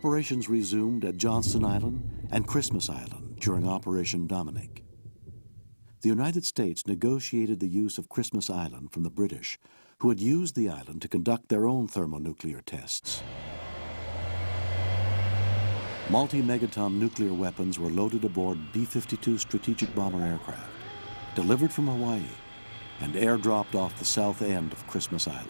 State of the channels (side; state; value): both; inverted; correlation -1.00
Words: resumed at Johnston Island and Christmas Island during Operation Dominic. The United States negotiated the use of Christmas Island from the British, who had used the island to conduct their own thermonuclear tests. Multi-megaton nuclear weapons were loaded aboard B-52 strategic bomber aircraft, delivered from Hawaii, and airdropped off the south end of Christmas